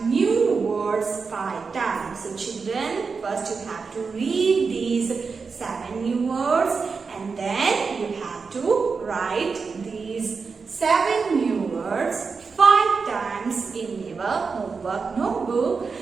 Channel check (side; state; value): left; quieter; 5.0 dB